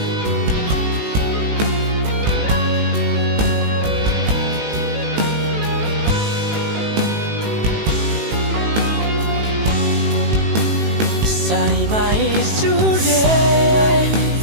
sai mai sude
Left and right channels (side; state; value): left; late; 18 ms